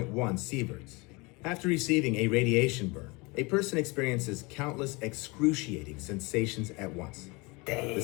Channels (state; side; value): quieter; right; 26.6 dB